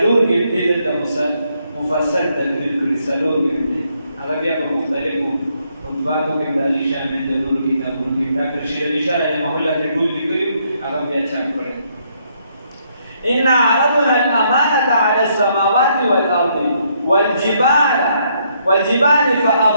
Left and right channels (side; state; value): both; inverted; correlation -0.73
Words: کې د مفصل تدریب کړی سلور کې هغه بیا په مختلفو مطبعاتو کې دالي شامل د نور کتابونو کې ډاکټر شیر علي شاه رحمه الله ته ټول لیکلو هغه بیا چاپ کړی إن عرضنا الأمانة على السماوات والأرض والجبال